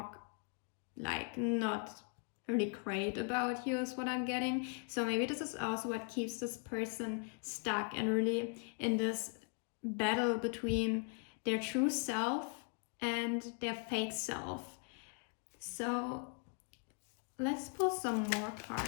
like not really great about you is what I'm getting. So maybe this is also what keeps this person stuck and really in this battle between their true self and their fake self. So let's pull some more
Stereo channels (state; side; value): quieter; right; 37.7 dB